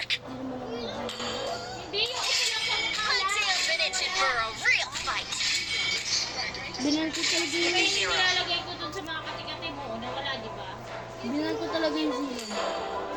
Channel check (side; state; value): both; identical; correlation 1.00